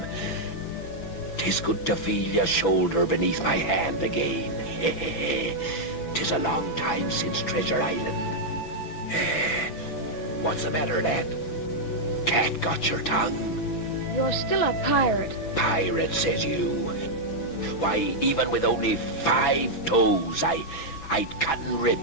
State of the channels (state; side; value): late; right; 6.1 ms